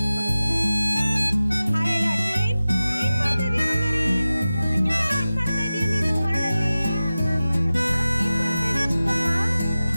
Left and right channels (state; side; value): inverted; both; correlation -0.96